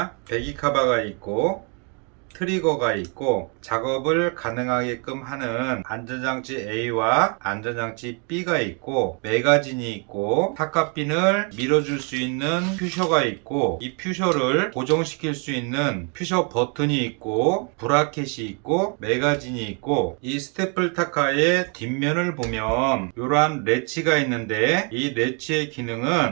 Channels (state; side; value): quieter; left; 36.6 dB